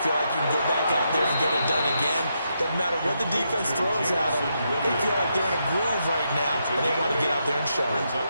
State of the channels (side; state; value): both; inverted; correlation -0.81